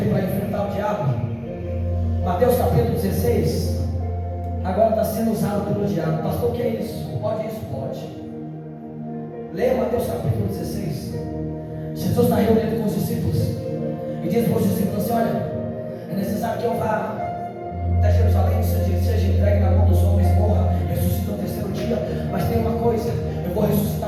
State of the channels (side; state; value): both; identical; correlation 1.00